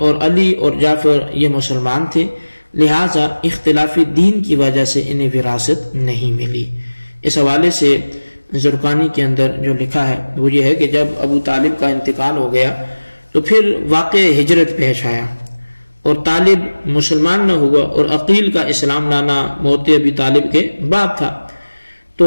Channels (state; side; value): inverted; both; correlation -1.00